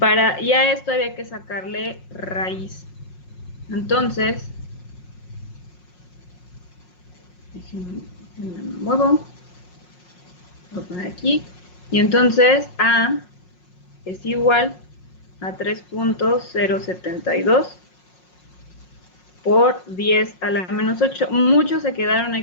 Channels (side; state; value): right; late; 5.5 ms